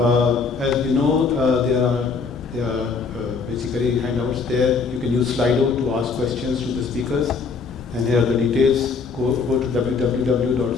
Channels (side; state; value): right; quieter; 4.9 dB